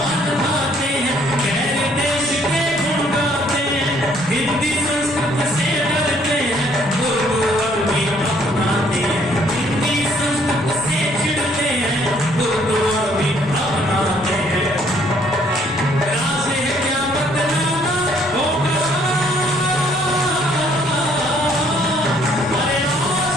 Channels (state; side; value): normal; both; correlation 0.64